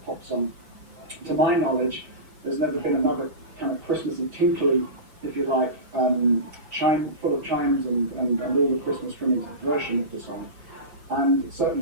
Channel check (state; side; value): late; left; 6.2 ms